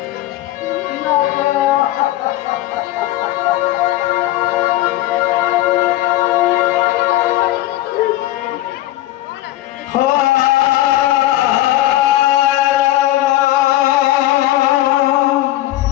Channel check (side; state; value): right; quieter; 15.3 dB